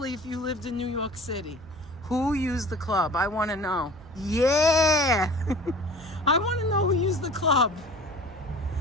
if you lived in New York City. Who used the club? I want to know. Yeah! I want to know who used the club.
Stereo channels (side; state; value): right; noise; hum, 21 dB below the sound